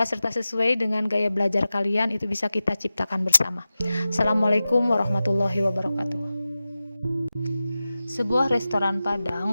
serta sesuai dengan gaya belajar kalian itu bisa kita ciptakan bersama. Assalamualaikum warahmatullahi wabarakatuh. Sebuah restoran Padang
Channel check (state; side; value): inverted; both; correlation -0.95